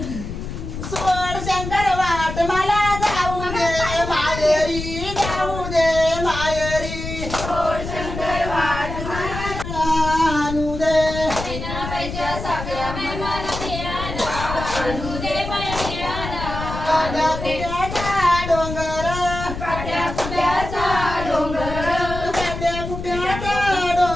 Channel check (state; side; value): noise; left; rumble, 7 dB below the sound